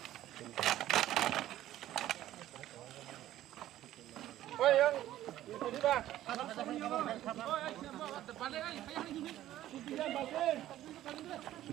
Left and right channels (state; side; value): quieter; left; 13.5 dB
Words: ওই ইয়ং দিবা পালে I